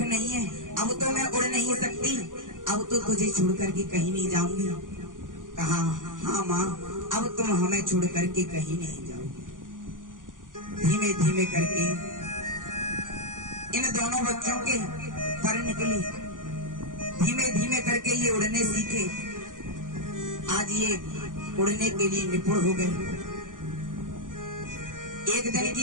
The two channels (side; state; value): left; late; 0.88 ms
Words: नहीं है, अब तो मैं उड़ नहीं सकती, अब तो तुझे छोड़ करके कहीं नहीं जाऊंगी। कहा हाँ माँ, अब तुम हमें छोड़ करके कहीं नहीं जाओगे। धीमे धीमे करके इन दोनों बच्चों के पर निकली, धीमे धीमे करके ये उड़ने सीखे। आज ये उड़ने के लिए निपुण हो गए। एक दिन